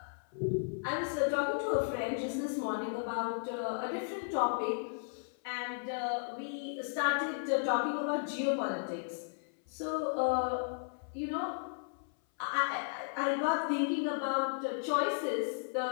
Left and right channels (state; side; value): silent; right; 55 dB below the other